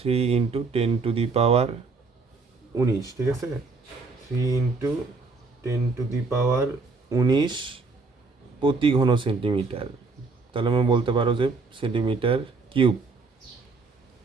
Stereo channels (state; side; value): quieter; left; 4.0 dB